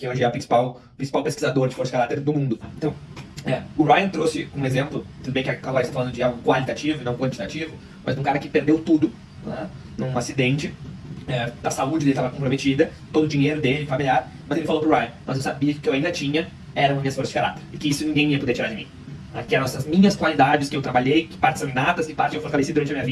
hoje é o principal pesquisador de força de caráter do mundo. Então, o Ryan trouxe um exemplo, tudo bem que agora está falando de algo qualitativo e não quantitativo, mas de um cara que perdeu tudo num acidente, a saúde dele estava comprometida, todo o dinheiro dele, familiar, mas ele falou pro Ryan, mas eu sabia que o que eu ainda tinha eram minhas forças de caráter, e que isso ninguém ia poder tirar de mim. Que eram essas minhas qualidades que eu trabalhei, que partes são inatas, que partes eu fortaleci durante a minha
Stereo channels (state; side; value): identical; both; correlation 1.00